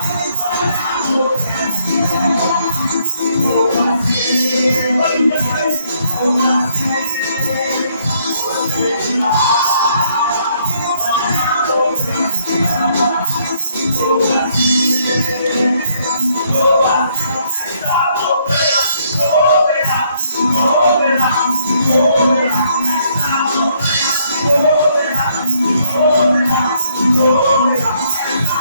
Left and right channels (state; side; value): inverted; both; correlation -0.70